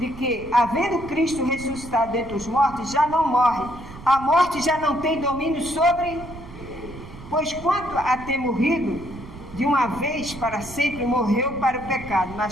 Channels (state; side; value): noise; right; rumble, 15 dB below the sound